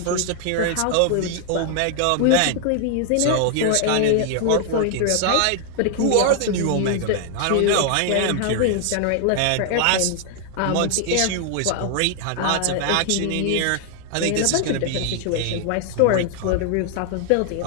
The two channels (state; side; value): different; both; correlation 0.00